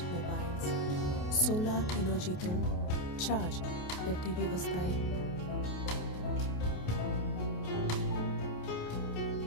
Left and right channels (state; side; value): late; right; 28 ms